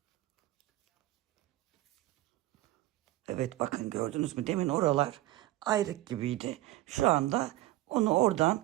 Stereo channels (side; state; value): left; quieter; 16.2 dB